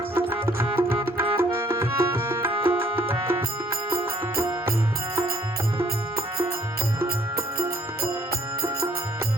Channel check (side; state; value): both; normal; correlation 0.61